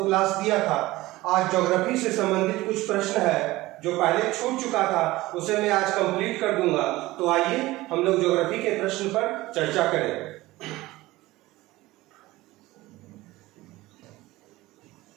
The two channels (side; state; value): left; quieter; 18.6 dB